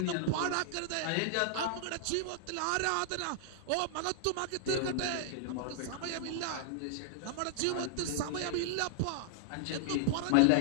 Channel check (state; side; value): different; both; correlation -0.01